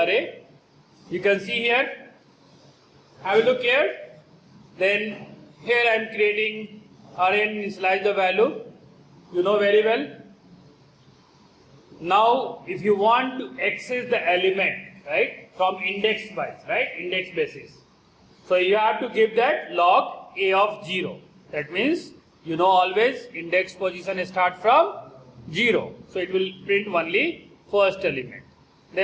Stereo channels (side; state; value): both; identical; correlation 1.00